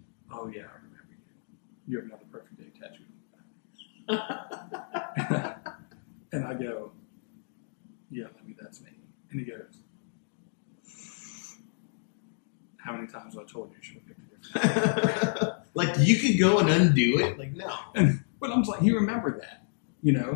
yeah, I remember you. You have another perfect day tattooed on your back. And I go, yeah, Lemmy, that's me. And he goes, how many times have I told you you should have picked a different name? Like, you could go and undo it? Like, no. But I'm just like, he remembered that. You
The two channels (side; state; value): right; silent; digital silence